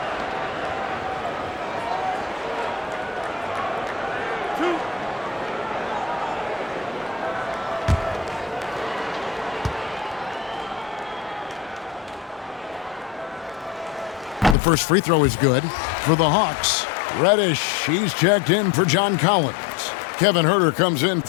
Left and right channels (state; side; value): drops out; right; at 14.6 s